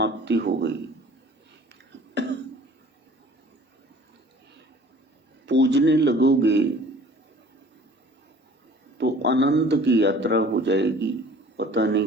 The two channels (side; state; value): both; normal; correlation 0.49